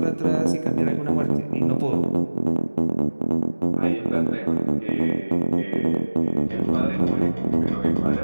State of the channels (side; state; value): both; inverted; correlation -1.00